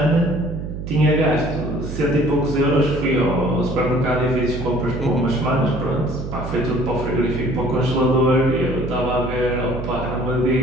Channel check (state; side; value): noise; right; hum, 7 dB below the sound